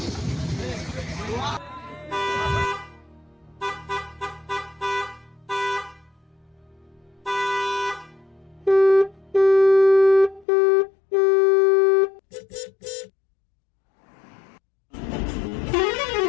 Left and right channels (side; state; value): right; drops out; at 10.5 s